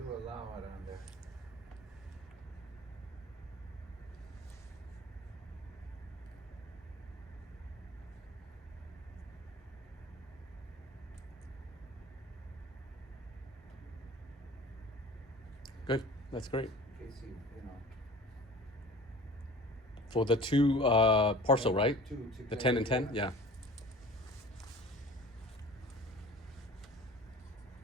allow it on there. Good. That's great. In case you know. For the two parcel, right? Two The together, 10 and 10? yeah. Yeah.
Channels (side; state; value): both; normal; correlation 0.43